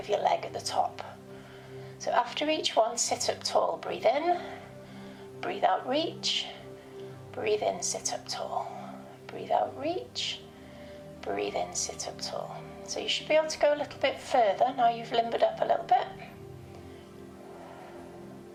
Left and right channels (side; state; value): both; identical; correlation 1.00